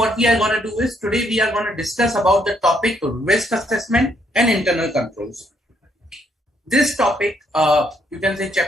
we are going to do is, today we are going to discuss about the topic risk assessment and internal controls. This topic, you can say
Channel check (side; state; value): both; normal; correlation 0.71